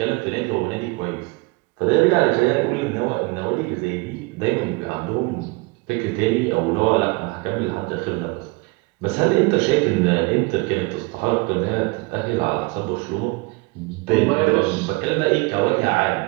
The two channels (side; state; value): left; quieter; 25.4 dB